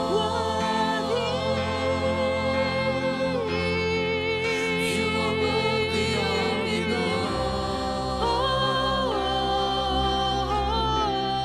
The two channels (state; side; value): identical; both; correlation 1.00